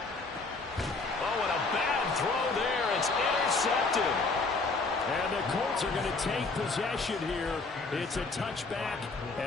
Oh, and a bad throw there. It's intercepted. And the Colts are going to take possession here. It's a touchback,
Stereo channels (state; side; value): quieter; right; 3.8 dB